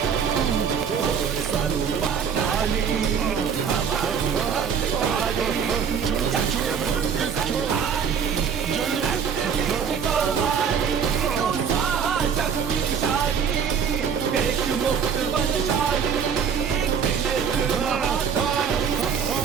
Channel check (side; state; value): left; quieter; 7.0 dB